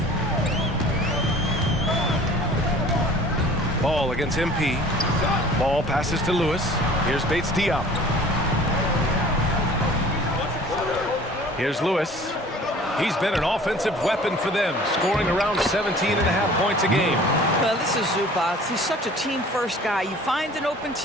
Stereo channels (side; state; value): both; normal; correlation 0.47